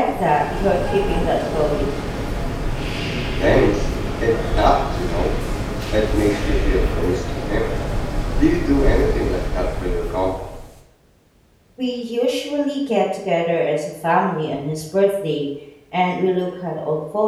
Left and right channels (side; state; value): both; identical; correlation 1.00